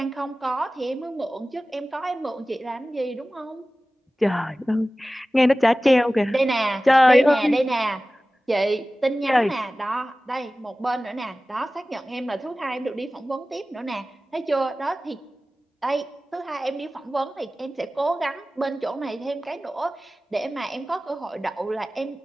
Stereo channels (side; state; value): both; normal; correlation 0.96